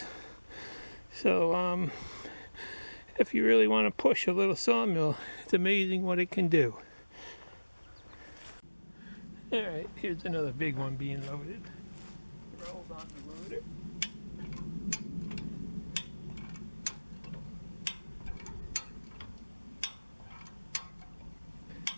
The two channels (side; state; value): both; inverted; correlation -1.00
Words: So if you really want to push a little sawmill, it's amazing what it can do. Alright, here's another big one being loaded. Rolled on the loader.